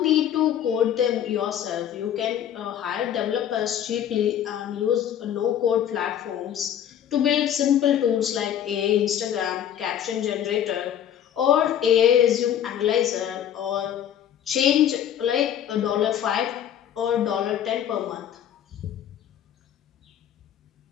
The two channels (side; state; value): right; quieter; 10.1 dB